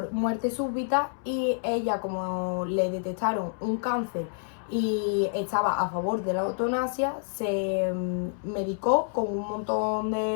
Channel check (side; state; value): right; silent; 59 dB below the other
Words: muerte súbita y ella, como le detectaron un cáncer y estaba a favor de la eutanasia, se medicó con un montón